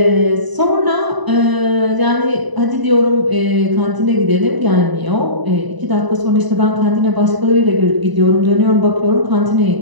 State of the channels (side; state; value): left; late; 1.0 ms